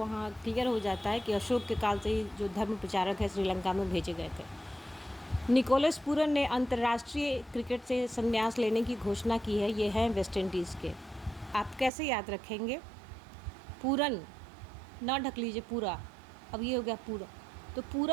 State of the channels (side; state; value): left; drops out; at 11.9 s